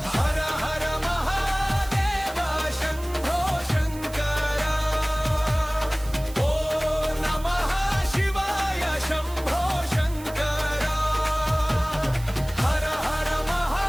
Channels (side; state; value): right; noise; hiss, 18 dB below the sound